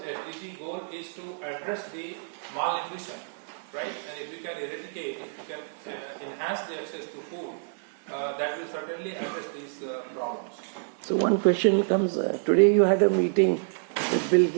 goal is to address the malnutrition, right? And if you can eradicate, if you can enhance the access to food, that will certainly address these problems. So one question comes, today you had a meeting with Bill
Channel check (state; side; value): silent; left; digital silence